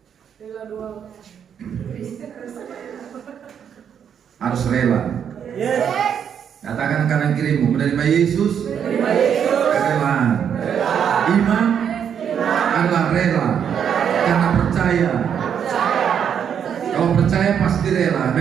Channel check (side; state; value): left; quieter; 8.2 dB